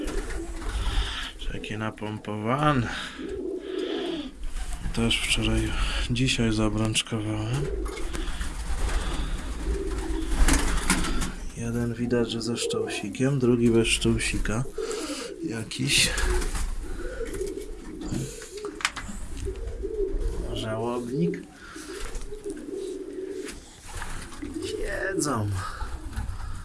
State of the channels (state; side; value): identical; both; correlation 1.00